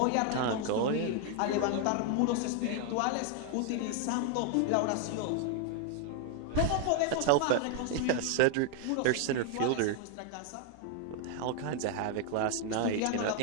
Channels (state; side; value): different; both; correlation 0.00